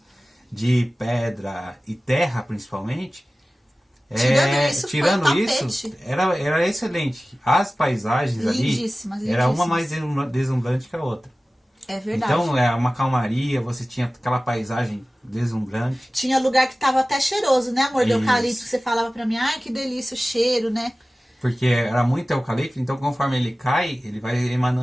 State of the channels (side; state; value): both; normal; correlation 0.97